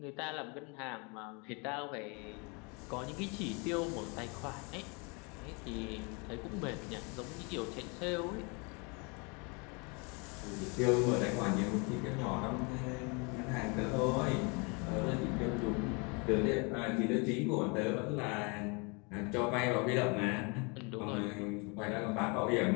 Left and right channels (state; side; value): quieter; right; 31.6 dB